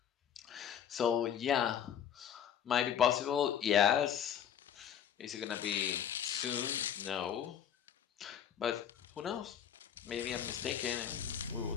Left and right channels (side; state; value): right; quieter; 9.0 dB